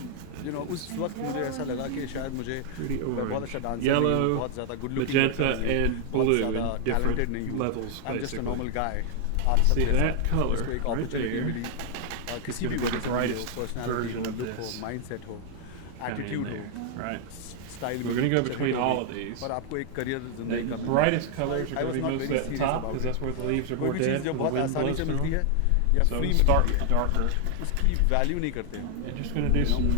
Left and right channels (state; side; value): different; both; correlation 0.00